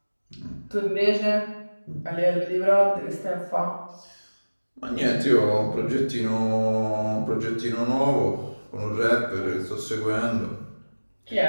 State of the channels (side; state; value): both; inverted; correlation -1.00